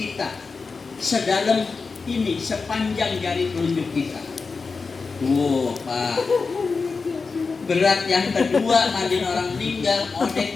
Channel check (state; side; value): quieter; right; 4.5 dB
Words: Sedalam ini, sepanjang jari telunjuk kita. Pak. Berat yang kedua, mandiin orang meninggal,